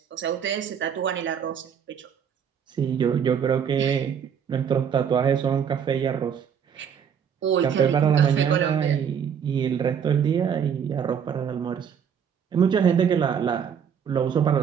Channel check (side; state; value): left; quieter; 7.8 dB